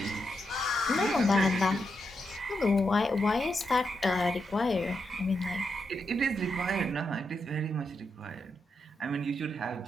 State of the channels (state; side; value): normal; both; correlation 0.83